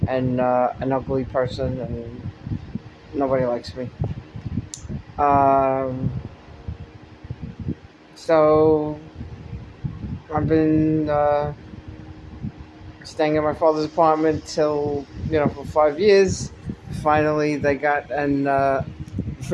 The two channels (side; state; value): both; identical; correlation 1.00